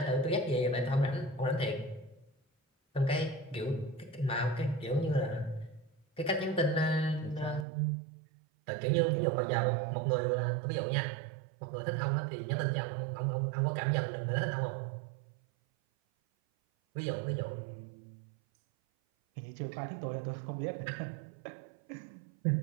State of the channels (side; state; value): left; drops out; at 7.7 s